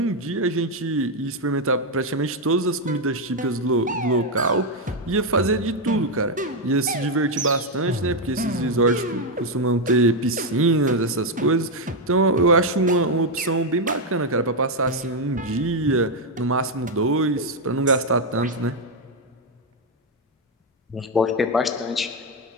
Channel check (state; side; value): normal; both; correlation 0.03